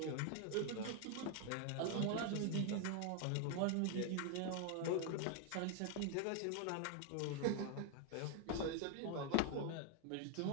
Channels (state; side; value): different; both; correlation 0.01